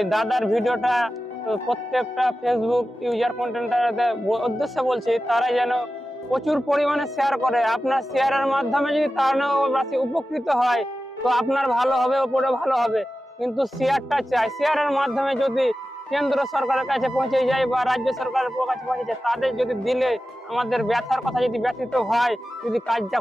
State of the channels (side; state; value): both; normal; correlation 0.93